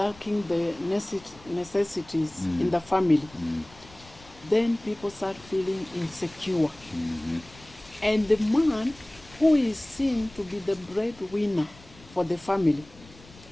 the necessities in the family, then people start feeling insecure. And the man who is seen to be the breadwinner for the family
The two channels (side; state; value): left; noise; rumble, 23 dB below the sound